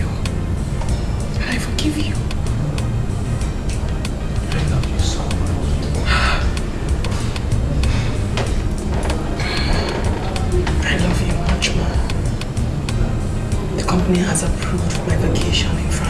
And I forgive you. I love you so much. I love you much more. The company has approved my vacation in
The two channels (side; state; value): both; identical; correlation 1.00